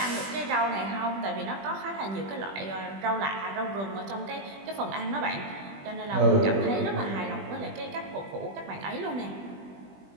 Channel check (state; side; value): late; left; 20 ms